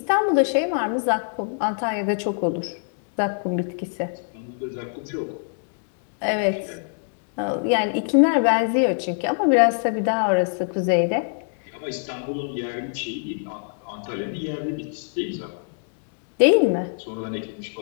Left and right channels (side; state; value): right; silent; digital silence